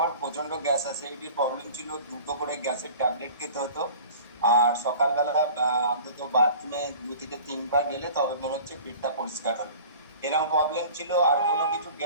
প্রচন্ড গ্যাস অ্যাসিডিটির প্রবলেম ছিল, দুটো করে গ্যাসের ট্যাবলেট খেতে হতো। আর সকালবেলা অন্তত বাথরুমে 2 থেকে 3 বার গেলে তবে মনে হচ্ছে পেটটা পরিষ্কার হলো, এরকম প্রবলেম ছিল। আর কোনো কিছু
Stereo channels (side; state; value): both; inverted; correlation -0.43